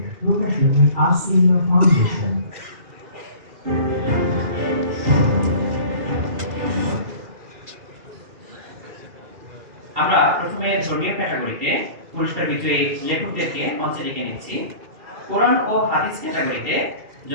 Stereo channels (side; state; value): left; late; 2.4 ms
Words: প্রকাশনী আসিনা ফাউন্ডেশন। আমরা প্রথমে ধর্মীয় ক্যাটাগরিতে পুরস্কার বিজয়ী লেখকদেরকে মঞ্চে ডেকে নিচ্ছি। কোরআন ও হাদিস ক্যাটাগরিতে